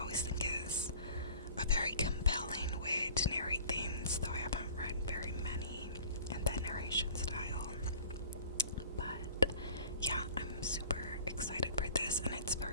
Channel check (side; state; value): both; inverted; correlation -0.45